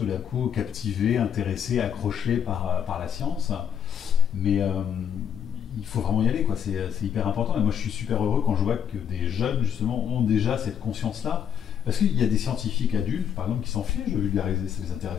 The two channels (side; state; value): right; quieter; 8.6 dB